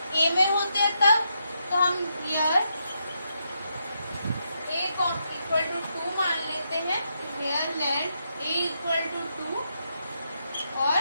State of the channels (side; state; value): both; inverted; correlation -0.81